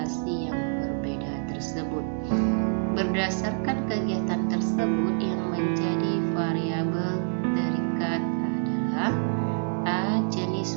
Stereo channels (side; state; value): left; silent; 60 dB below the other